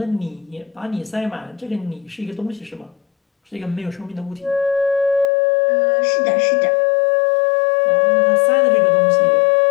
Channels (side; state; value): right; drops out; at 5.3 s